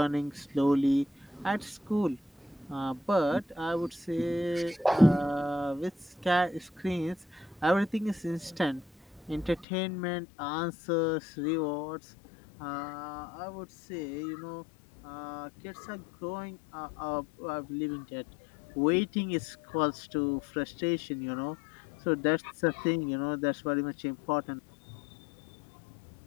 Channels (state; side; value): drops out; right; at 9.7 s